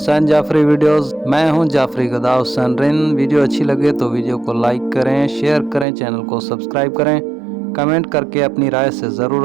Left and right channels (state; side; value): drops out; left; at 5.9 s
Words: جعفری ویڈیوز۔ میں ہوں جعفری گدا حسین رن۔ ویڈیو اچھی لگے تو ویڈیو کو لائک کریں، شیئر کریں، چینل کو سبسکرائب کریں، کمنٹ کر کے اپنی رائے سے